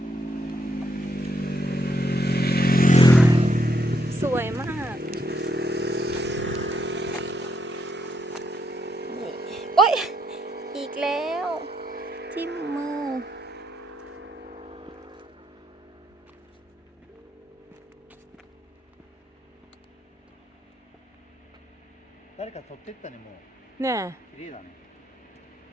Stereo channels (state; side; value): normal; both; correlation 0.76